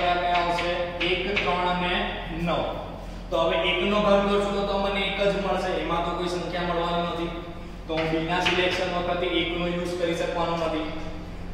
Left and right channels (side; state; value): both; identical; correlation 1.00